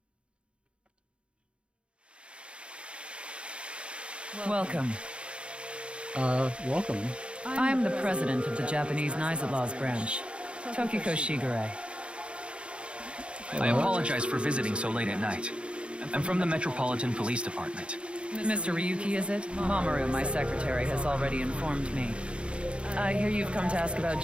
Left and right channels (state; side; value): late; left; 0.058 ms